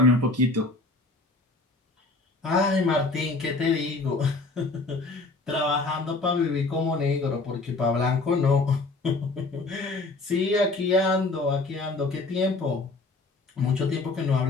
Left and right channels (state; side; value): quieter; right; 3.3 dB